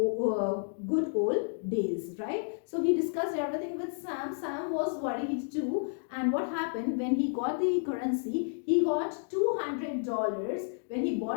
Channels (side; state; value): right; silent; digital silence